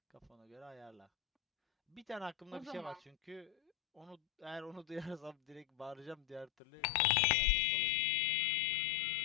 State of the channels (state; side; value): drops out; right; at 6.5 s